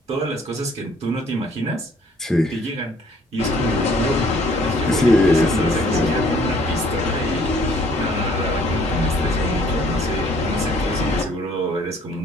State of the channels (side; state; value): both; normal; correlation 0.60